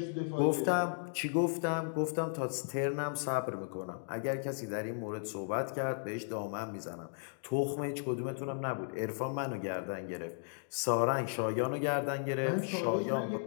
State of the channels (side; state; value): right; silent; digital silence